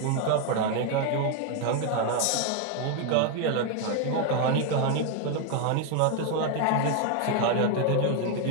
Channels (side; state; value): both; different; correlation 0.01